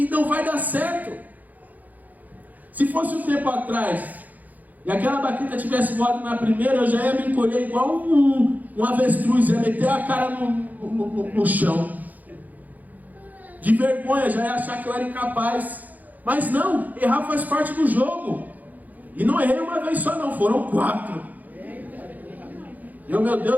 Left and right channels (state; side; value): late; left; 0.081 ms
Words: não vai dar certo. Se fosse um tempo atrás, e aquela baqueta tivesse voado na primeira, eu já ia me encolher igual um avestruz, ia meter a cara no chão. De vergonha, já ia achar que eu era incapaz. Mas não, errar faz parte do jogo. E não errei uma vez só não, foram 4. Meu